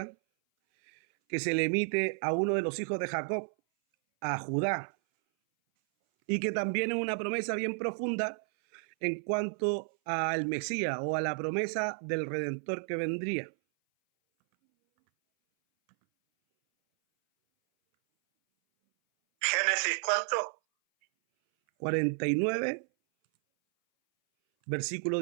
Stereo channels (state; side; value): silent; left; 57 dB below the other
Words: que se le emite a uno de los hijos de Jacob, a Judá, y que también es una promesa bien profunda en cuanto al Mesías, o a la promesa del Redentor que vendría. Génesis, ¿cuánto? 49, versículo